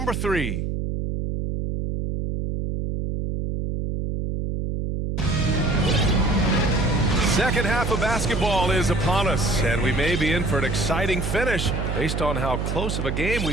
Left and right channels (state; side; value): noise; right; hum, 2 dB below the sound